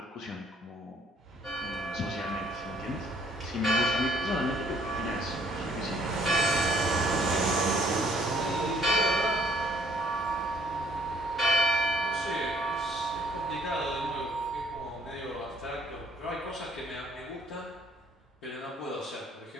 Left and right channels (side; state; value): both; normal; correlation 0.63